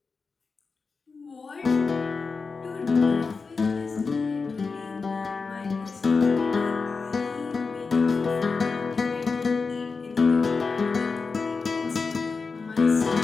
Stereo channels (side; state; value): right; quieter; 4.6 dB